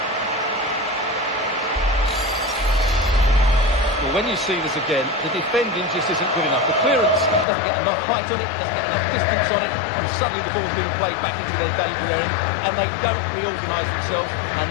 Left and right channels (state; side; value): drops out; right; at 7.5 s